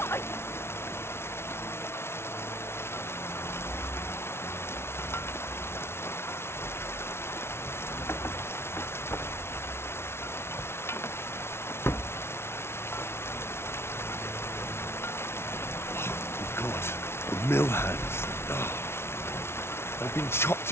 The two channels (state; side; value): late; right; 0.12 ms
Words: God, the mill hands. Oh, they've been chopped